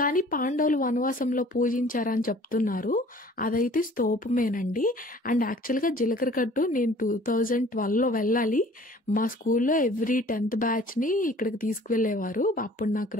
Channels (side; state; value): both; normal; correlation 0.51